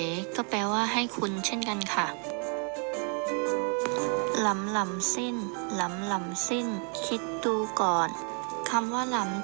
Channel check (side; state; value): left; quieter; 38.8 dB